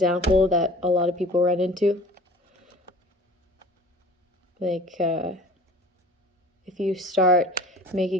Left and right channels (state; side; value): normal; both; correlation 0.44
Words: that a lot of people run into. Like, if you start